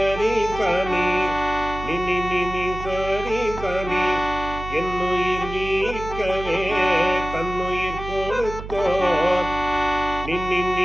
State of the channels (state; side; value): noise; right; hum, 10 dB below the sound